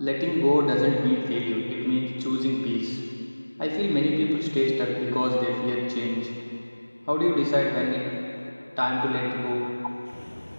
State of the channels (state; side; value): inverted; both; correlation -1.00